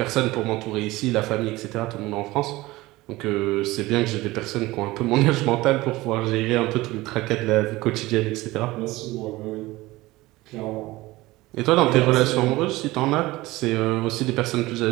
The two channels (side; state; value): left; quieter; 19.4 dB